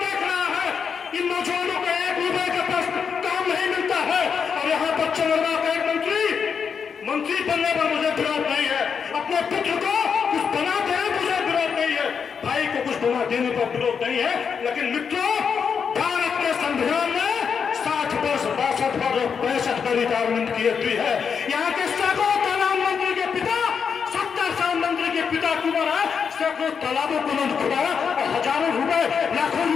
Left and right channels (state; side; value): quieter; right; 6.4 dB